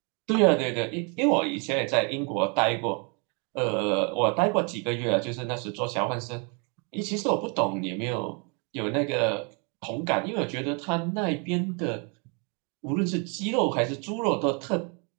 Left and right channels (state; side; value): quieter; left; 35.1 dB